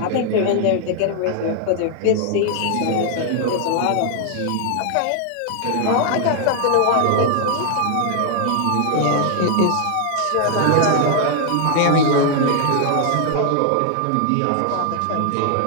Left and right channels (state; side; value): different; both; correlation 0.00